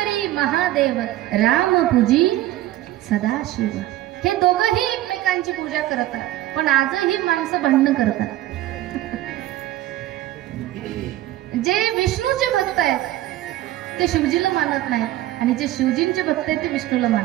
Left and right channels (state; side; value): quieter; left; 15.0 dB